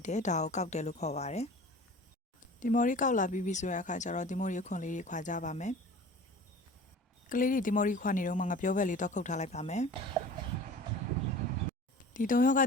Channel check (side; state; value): both; normal; correlation 0.41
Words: တယ်ဒါကိုကောက်တယ်လို့ခေါ်ပါတယ်ဒီမော်ရီကောက်လာပြီးပြီဆိုတဲ့အခါကျတော့ဒီမော်ရီခွန်လေးတွေခွာကြပါမယ်ကလေးတွေဒီမော်ရီခွာနေတော့မှငါပြောဘက်လေးတော့ခုတ်ထားလိုက်ပါမယ်ဒီတုံရောက